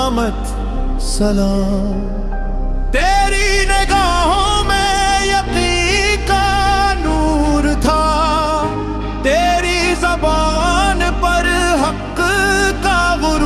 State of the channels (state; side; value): identical; both; correlation 1.00